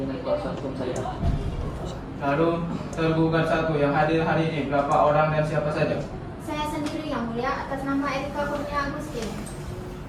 kuasa hukum saya. Lalu tergugat 1 yang hadir hari ini berapa orang dan siapa saja? Saya sendiri yang mulia atas nama Erika Kurnia Agustin.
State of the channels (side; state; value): both; identical; correlation 1.00